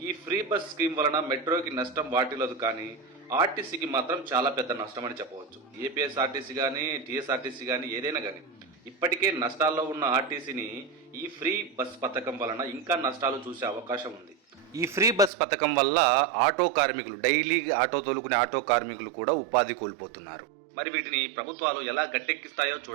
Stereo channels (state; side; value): drops out; left; at 15.3 s